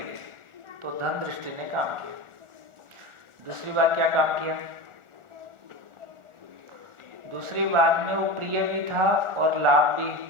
ली, तो धन दृष्टि ने काम किया। दूसरी बार क्या काम किया? दूसरी बार में वो प्रिय भी था और लाभ भी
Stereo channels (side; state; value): left; late; 1.4 ms